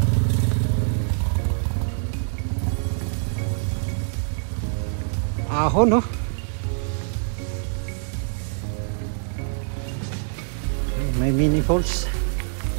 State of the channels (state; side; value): silent; left; digital silence